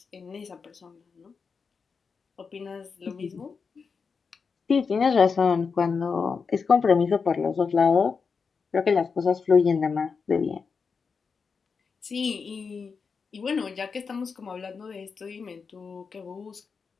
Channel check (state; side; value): quieter; right; 5.4 dB